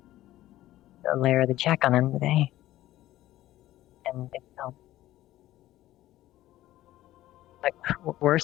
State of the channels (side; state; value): right; quieter; 15.0 dB